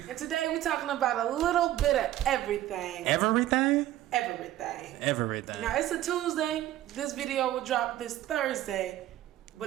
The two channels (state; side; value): quieter; left; 13.8 dB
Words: And today we're talking about a little bit of everything. Everything? Everything. Now it's a Tuesday. This video will drop this Thursday,